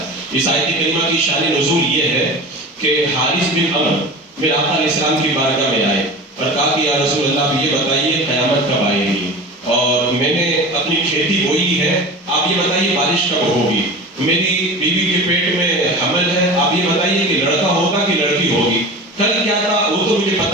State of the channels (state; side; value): normal; both; correlation 0.33